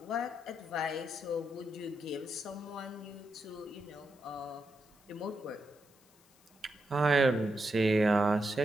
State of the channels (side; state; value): left; noise; hiss, 29 dB below the sound